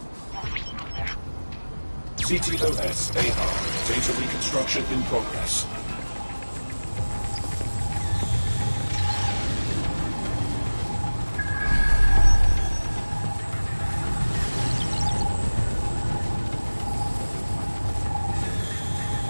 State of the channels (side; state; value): both; inverted; correlation -1.00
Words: CTOS AR. Data reconstruction in progress.